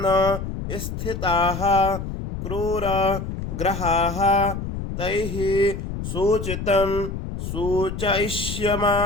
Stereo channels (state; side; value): noise; left; rumble, 6 dB below the sound